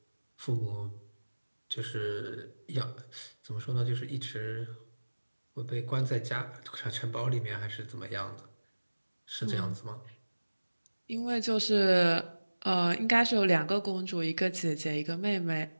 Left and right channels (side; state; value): both; inverted; correlation -1.00